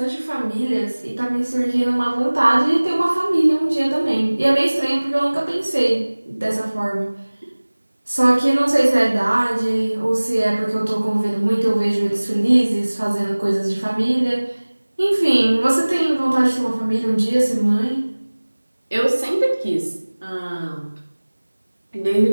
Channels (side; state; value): both; inverted; correlation -1.00